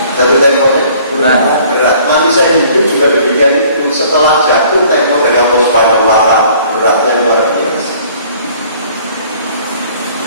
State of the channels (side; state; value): both; inverted; correlation -0.55